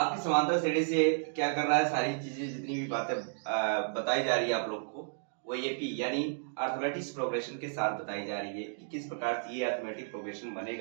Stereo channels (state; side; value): silent; left; digital silence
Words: समांतर श्रेणी से क्या कर रहा है, सारी चीजें जितनी भी बातें बताई जा रही है आप लोग को, वो एपी यानी अर्थमेटिक प्रोग्रेशन के साथ बताई जा रही है कि किस प्रकार से ये अर्थमेटिक प्रोग्रेशन